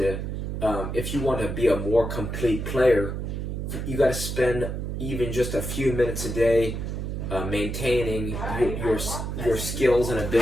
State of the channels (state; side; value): noise; right; hum, 4 dB below the sound